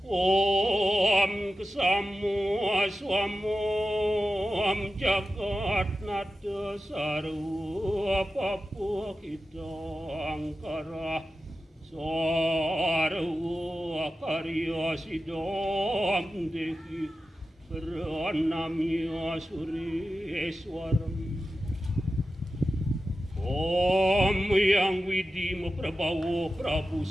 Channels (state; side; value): normal; both; correlation 0.93